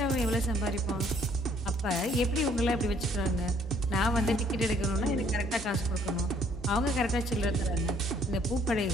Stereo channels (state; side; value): normal; both; correlation 0.63